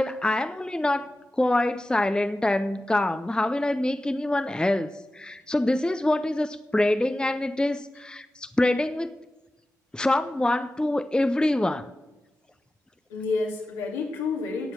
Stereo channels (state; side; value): normal; both; correlation 0.94